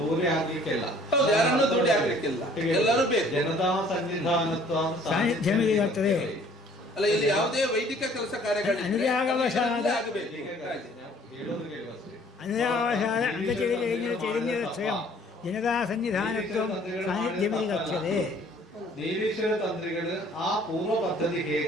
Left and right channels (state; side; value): normal; both; correlation 0.56